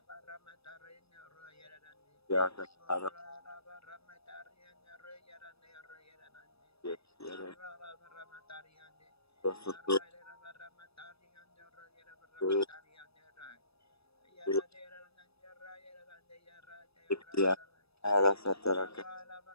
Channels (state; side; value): late; right; 0.78 ms